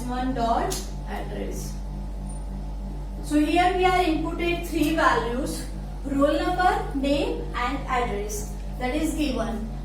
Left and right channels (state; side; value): identical; both; correlation 1.00